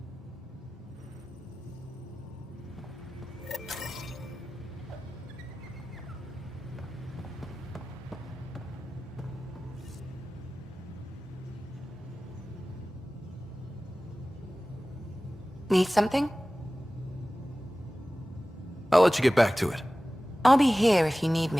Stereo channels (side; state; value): both; normal; correlation 0.97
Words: Need something? I'll let you get back to it. I'll be here if you need